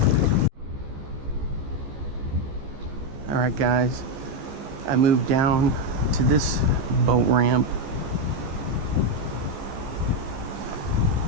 All right, guys, I moved down to this boat ramp.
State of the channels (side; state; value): left; late; 15 ms